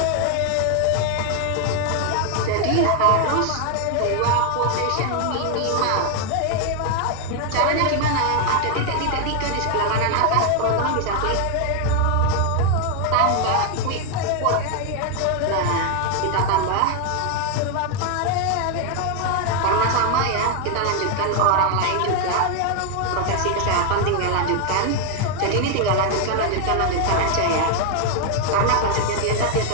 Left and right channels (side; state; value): both; different; correlation 0.01